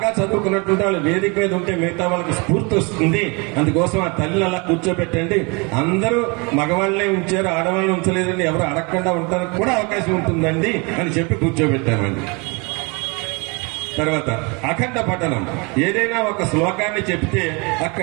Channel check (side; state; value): left; quieter; 29.8 dB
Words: చదువుకున్నటువంటి వాళ్ళు వేదిక మీద ఉంటే మిగతా వాళ్ళకి స్ఫూర్తి వస్తుంది, అందుకోసం ఆ తల్లిని అలా కూర్చోబెట్టండి. అందరూ మగవాళ్ళనే ఉంచారు, ఆడవాళ్ళని ఉంచలేదండి, ఎవరు అడగకుండా ఉండడానికి కూడా అవకాశం ఉంటుందండి అని చెప్పి కూర్చోబెట్టామండి. తర్వాత అఖండ పఠనం, ఏదైనా ఒక శ్లోకాన్ని చెప్తే